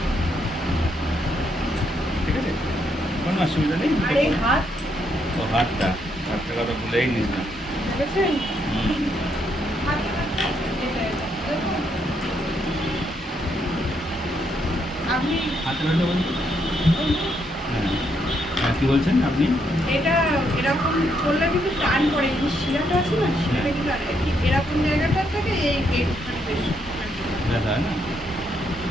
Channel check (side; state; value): both; normal; correlation 0.76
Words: ঠিক আছে, কোনো অসুবিধা নেই। ও হাতটা, হাতটা কথা ভুলেই নিস না। হুম। হাতে ব্যথা বলতে? হ্যাঁ হ্যাঁ, কী বলছেন আপনি? এটা এরকম করলে কিন্তু টান পড়ে, এই শিরাটা আছে না, শিরাটা কিন্তু ঠিক এরকম জায়গাটা থেকে এইখানে বেশি ব্যথা হয় না?